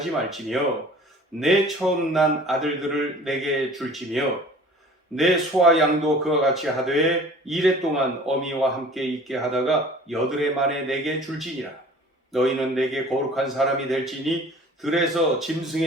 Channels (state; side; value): normal; both; correlation 0.47